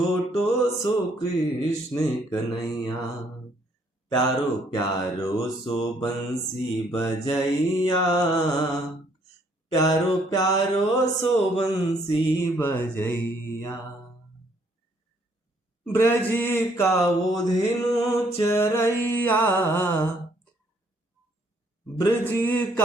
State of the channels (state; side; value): normal; both; correlation 0.66